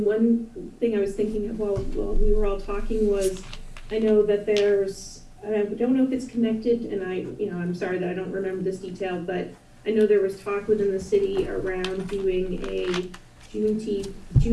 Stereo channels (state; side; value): identical; both; correlation 1.00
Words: one thing I was thinking of while we were all talking was, I know that there's, I don't know if it's connected, and I'm sorry that I don't remember this detail, but I know there was talk within the city around doing a